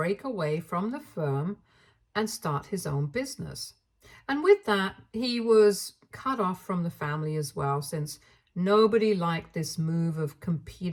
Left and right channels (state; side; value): identical; both; correlation 1.00